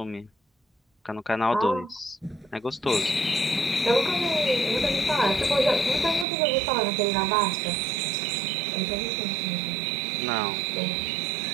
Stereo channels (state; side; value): drops out; left; at 6.2 s